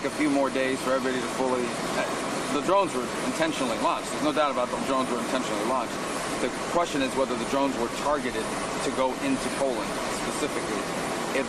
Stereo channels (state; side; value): identical; both; correlation 1.00